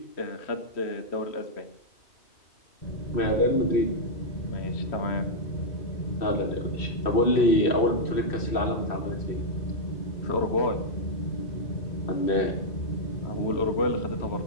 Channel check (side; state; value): right; late; 2.6 ms